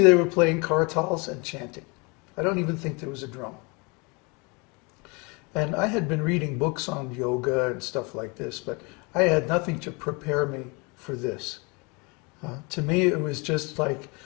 they were playing kartals and chanting. I don't even think there was a drum. And I had been reading books on yoga and stuff like this, but I had nothing to prepare me for this. To me, it was just like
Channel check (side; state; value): right; quieter; 29.4 dB